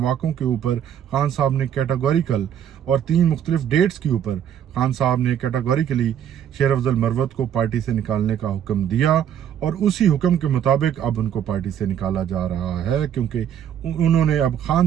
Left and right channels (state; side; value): quieter; left; 9.5 dB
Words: के ऊपर खान साहब ने कैटेगोरिकल और 3 मुख्तलिफ डेट्स के ऊपर खान साहब ने कैटेगोरिकली शेर अफजल मरवत को पार्टी से निकालने का हुक्म दिया और उसी हुक्म के मुताबिक अब उनको पार्टी से निकाला जा रहा है, क्योंकि उन्होंने अब खान